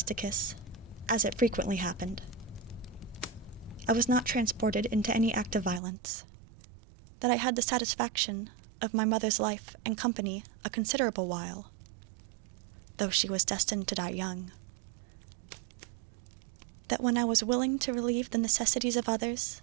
as it frequently happened, I was not transported into any act of violence, that I had the satisfaction of my mother's life and company a considerable while, though she was destined to die young, that when I was willing to relieve the necessities of others,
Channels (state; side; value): drops out; left; at 5.8 s